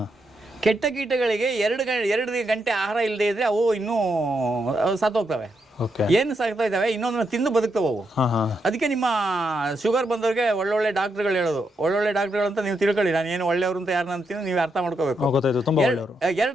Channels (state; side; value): normal; both; correlation 0.81